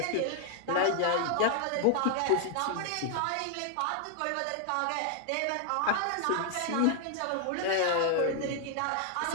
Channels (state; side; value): different; both; correlation 0.00